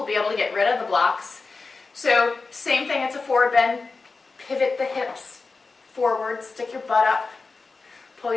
be able to get rid of the blocks. So same thing, it's a forward bend. Pivot the hips forward, stick your butt up, pull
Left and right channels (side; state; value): right; quieter; 4.1 dB